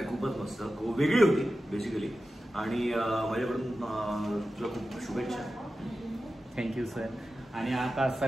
खूपच मस्त, वेगळी होती बेसिकली. आणि माझ्याकडून तुला खूप शुभेच्छा. Thank you sir. आणि आता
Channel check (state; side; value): normal; both; correlation 0.93